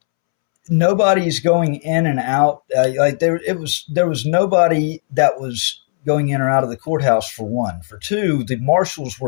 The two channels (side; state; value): right; silent; 68 dB below the other